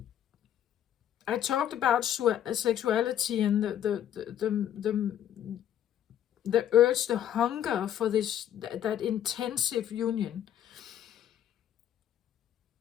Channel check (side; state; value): right; quieter; 10.6 dB